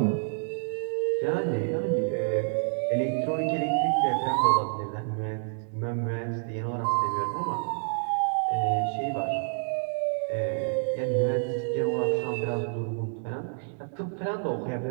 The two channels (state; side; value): silent; left; 58 dB below the other